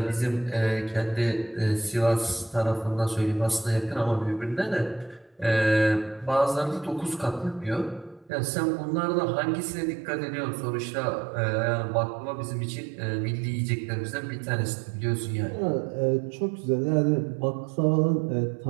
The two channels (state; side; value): drops out; left; at 8.3 s